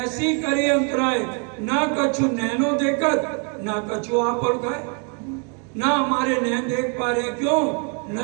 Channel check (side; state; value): left; quieter; 38.9 dB